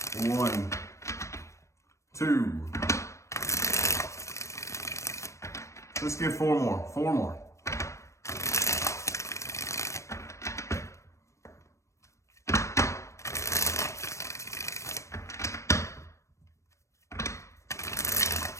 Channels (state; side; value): late; right; 0.14 ms